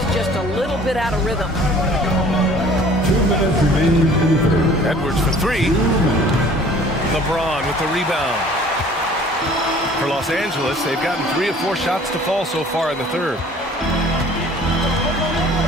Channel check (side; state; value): both; normal; correlation 0.51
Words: just a little bit out of rhythm. 2 minutes remaining in the third. Edwards for 3. LeBron with the rebound. For Los Angeles, they've gotten 3 of 4 shots to fall so far in the third.